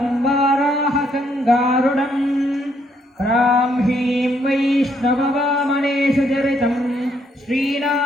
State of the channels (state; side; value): normal; both; correlation 0.72